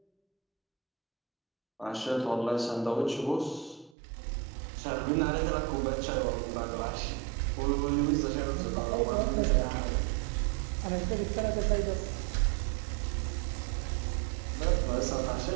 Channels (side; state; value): left; drops out; at 3.9 s